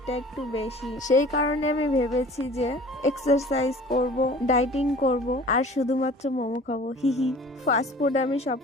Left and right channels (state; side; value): normal; both; correlation 0.46